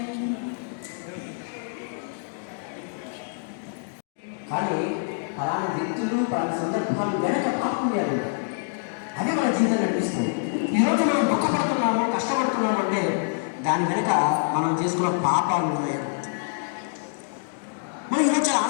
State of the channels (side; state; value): right; silent; digital silence